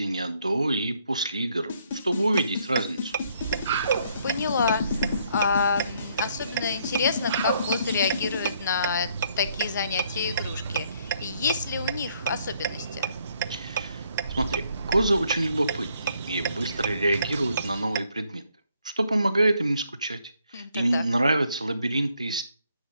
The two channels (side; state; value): both; inverted; correlation -0.69